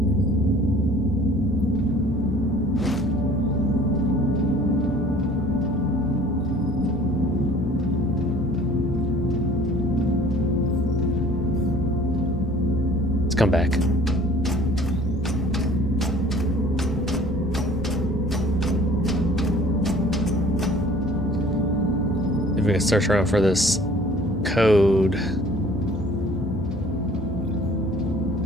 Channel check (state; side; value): normal; both; correlation 0.51